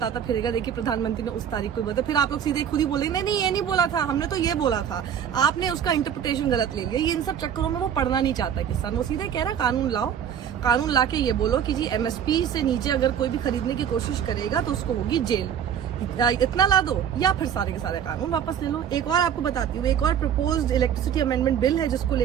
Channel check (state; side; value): quieter; left; 8.8 dB